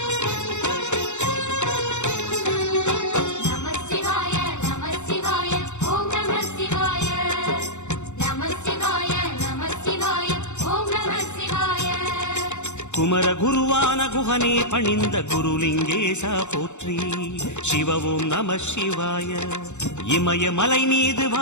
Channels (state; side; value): late; right; 0.83 ms